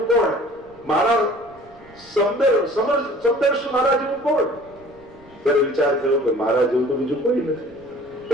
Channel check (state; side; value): noise; right; rumble, 27 dB below the sound